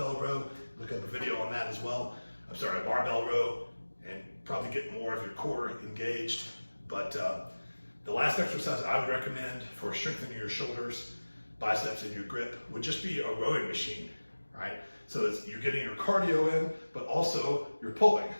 row, look up a video on that as well. I'm sorry, a barbell row, and probably get more of your core engaged. But the last exercise I would recommend for strengthening your shoulders, biceps, and your grip would just be a rowing machine, right? So you're getting your cardio in, but also you're pulling.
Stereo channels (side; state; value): both; inverted; correlation -1.00